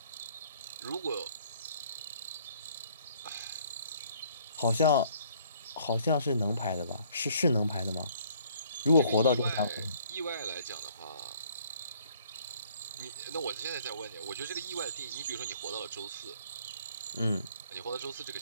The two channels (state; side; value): inverted; both; correlation -0.61